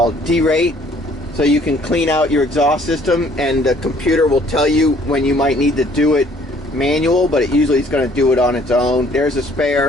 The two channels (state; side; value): normal; both; correlation 0.59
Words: D-rate. So you can clean out your exhaust system, and the computer will tell you when you might need to do it manual, but it usually is going to do it on its own. There's a